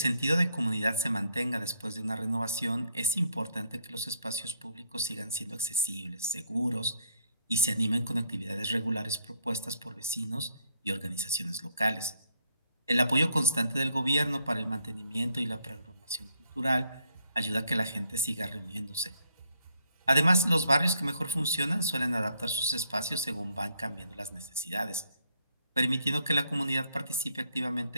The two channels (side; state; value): both; inverted; correlation -0.72